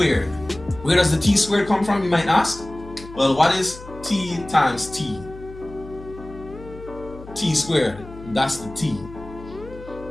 Where does the t squared come from, you might ask? Well, what is t times t? T squared, that's the t.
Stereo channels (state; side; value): noise; left; hum, 16 dB below the sound